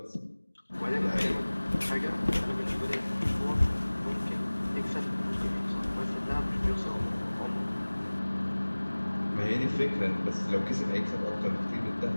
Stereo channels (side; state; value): both; inverted; correlation -1.00